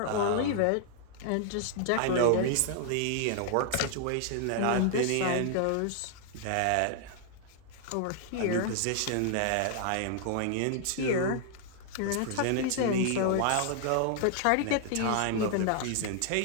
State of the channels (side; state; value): both; different; correlation 0.00